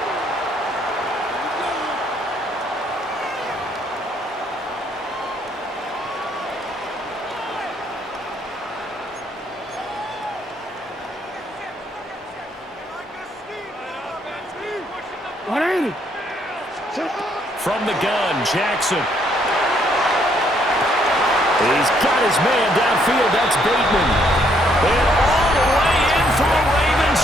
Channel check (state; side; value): normal; both; correlation 0.69